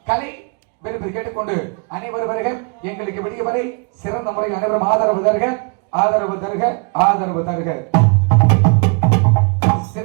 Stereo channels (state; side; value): quieter; left; 35.7 dB